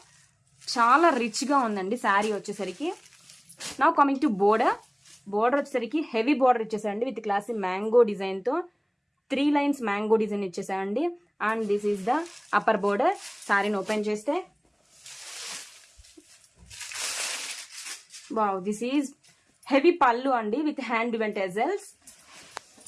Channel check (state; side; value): identical; both; correlation 1.00